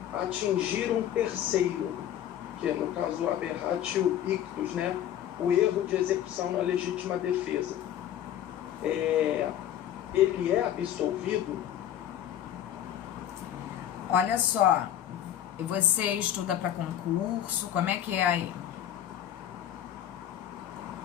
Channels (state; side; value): quieter; right; 11.0 dB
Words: atingir um terceiro, que é no caso o aberratio ictus, né? O erro de execução na legítima defesa, ele é absolvido? Olha só, você estuda para concurso, como é que é aí?